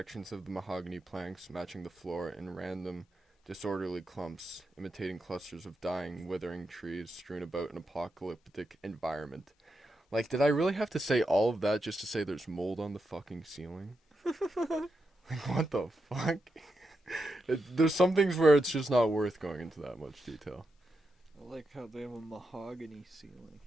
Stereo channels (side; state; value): both; normal; correlation 0.86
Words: of the mahogany planks matching the floor in random, disorderly clumps, imitating clusters of dying, withering trees strewn about an apocalyptic environment. Did I really have to say all of that just to say there's mold on the fucking ceiling? What the fuck? There's some things where it's just not worth going into that much detail. I like how they have a mahogany ceiling.